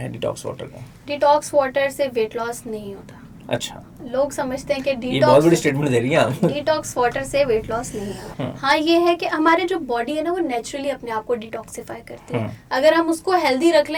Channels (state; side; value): identical; both; correlation 1.00